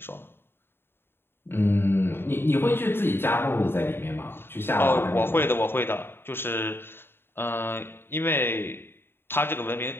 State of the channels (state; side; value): late; right; 0.11 ms